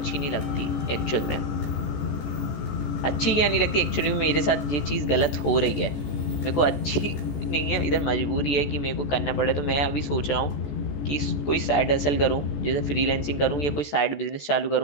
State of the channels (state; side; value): late; right; 14 ms